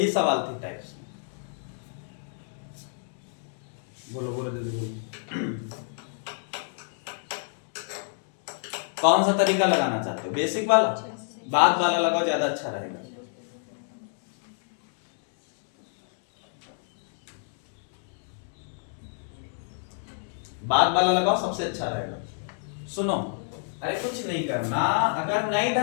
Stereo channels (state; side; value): silent; right; digital silence